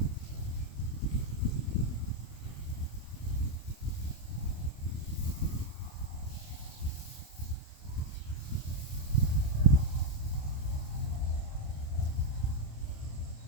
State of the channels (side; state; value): right; late; 28 ms